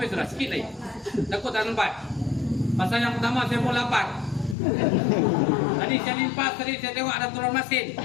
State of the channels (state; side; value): drops out; right; at 4.5 s